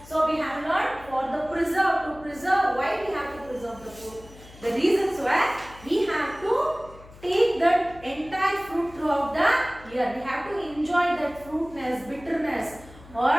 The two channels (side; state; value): left; noise; hum, 20 dB below the sound